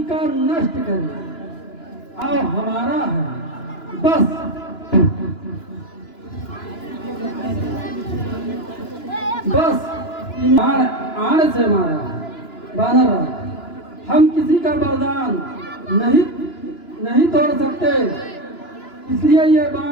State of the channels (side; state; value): right; late; 2.9 ms